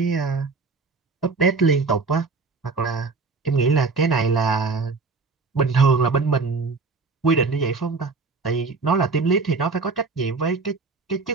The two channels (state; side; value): quieter; left; 4.3 dB